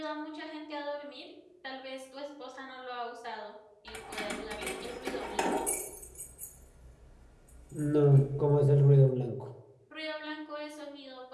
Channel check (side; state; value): both; identical; correlation 1.00